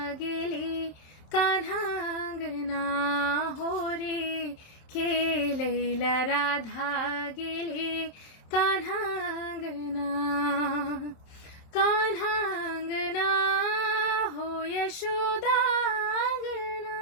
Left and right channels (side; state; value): right; late; 26 ms